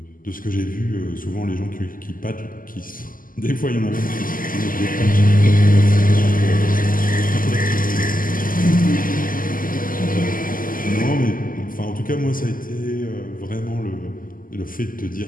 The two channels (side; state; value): right; late; 0.41 ms